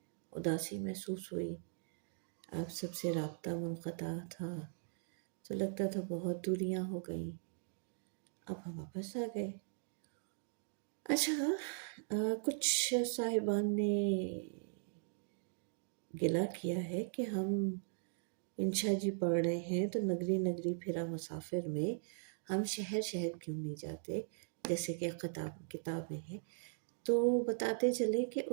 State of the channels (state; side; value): silent; left; digital silence